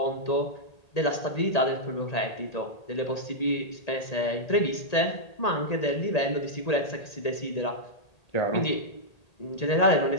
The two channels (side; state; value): right; late; 1.8 ms